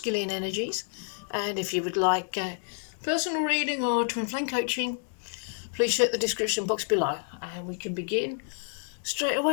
energies, and if you would like personal reading or twin flame coaching, please check the description box below, and we can begin straight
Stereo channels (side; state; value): right; silent; digital silence